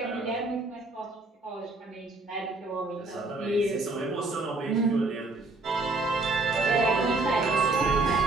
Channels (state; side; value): quieter; left; 3.2 dB